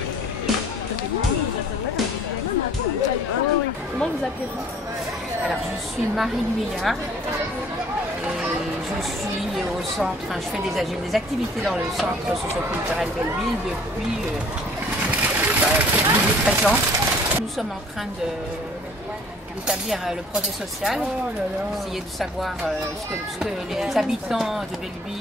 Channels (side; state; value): both; normal; correlation 0.53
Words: Comment vous appelez-vous? Alors je suis Marie Guyard et je suis au centre, je fais des activités dans le centre socio-culturel Belleville depuis 13 ans. Nous sommes en train d'établir le projet social, essayer de savoir ce que les habitants de